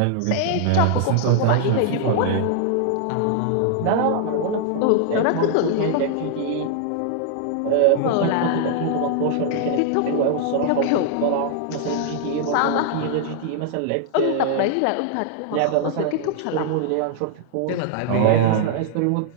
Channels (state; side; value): different; both; correlation 0.00